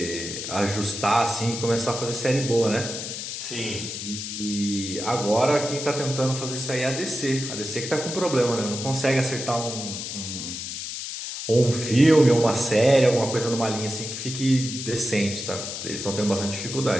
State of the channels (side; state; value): left; noise; hiss, 6 dB below the sound